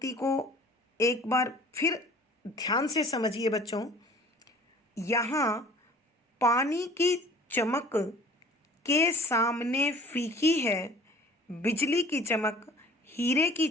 को एक बार फिर ध्यान से समझिए बच्चों। यहाँ पानी की चमक के सामने फीकी है, बिजली की चमक हीरे की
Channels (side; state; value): both; normal; correlation 0.48